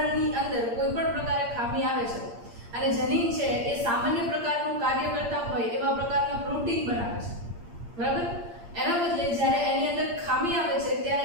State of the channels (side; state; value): left; late; 8.6 ms